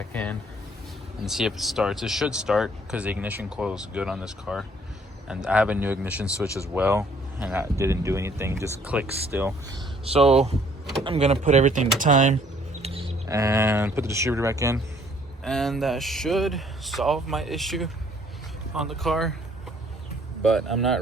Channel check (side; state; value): both; normal; correlation 0.61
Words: in, and see if it starts. It should start because the ignition coil is good on this car, and I have a new ignition switch as well, and that didn't do anything, just clicks still. So I'm gonna put everything to time and put the distributor back in, and that should solve my issue on the car. But I'm